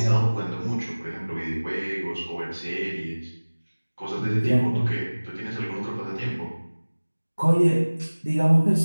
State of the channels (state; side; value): inverted; both; correlation -1.00